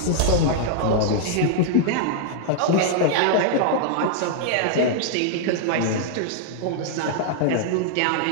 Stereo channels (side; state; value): both; different; correlation -0.01